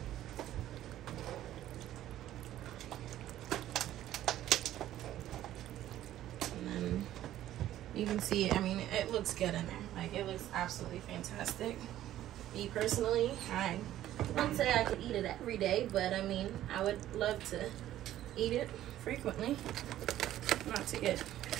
You can see it. I mean, it looks good in there. Like, it looks absolutely fantastic. Me personally, I wouldn't say I could eat it every day, but I mean, I would love to eat it frequently, not to get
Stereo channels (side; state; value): left; quieter; 13.0 dB